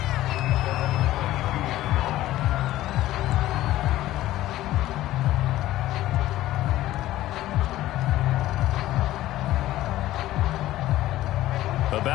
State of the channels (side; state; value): right; quieter; 15.1 dB